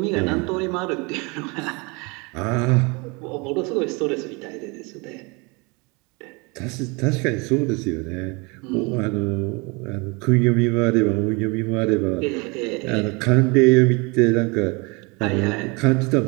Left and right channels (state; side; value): quieter; left; 28.4 dB